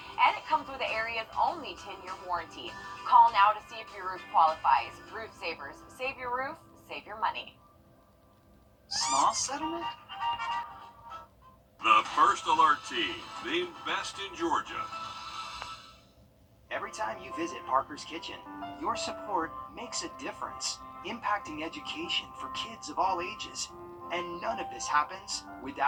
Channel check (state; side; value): identical; both; correlation 1.00